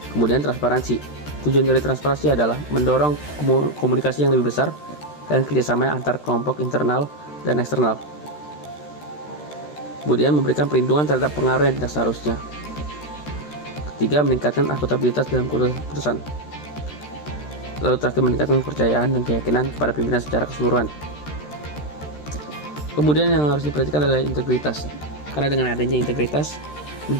Kemudian transparansi. Tujuan dari transparansi adalah mendorong komunikasi yang lebih besar dan kerjasama antar kelompok internal dan eksternal. Kemudian memberikan perlindungan terhadap pengaruh yang tidak seharusnya. Ketiga, meningkatkan akuntabilitas dalam keputusan. Lalu terakhir, meningkatkan kepercayaan dan keyakinan kepada pimpinan secara keseluruhan. Kemudian yang harus diperhatikan adalah integritas. Karena dengan adanya integritas,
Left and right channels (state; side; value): late; right; 13 ms